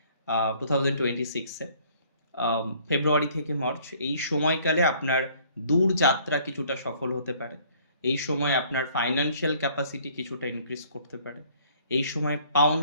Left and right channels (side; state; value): both; inverted; correlation -0.59